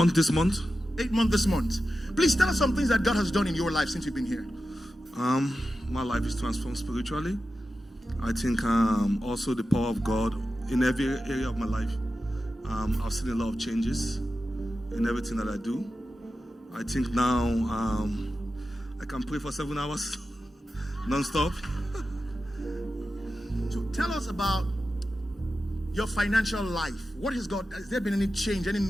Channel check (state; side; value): normal; both; correlation 0.92